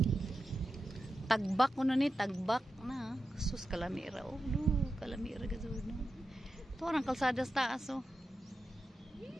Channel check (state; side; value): normal; both; correlation 0.90